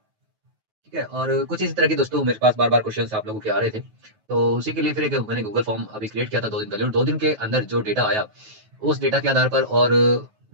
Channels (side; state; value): left; late; 9.3 ms